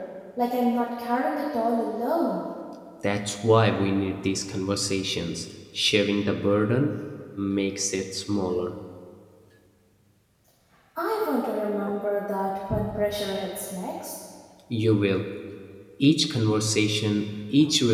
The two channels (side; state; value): both; identical; correlation 1.00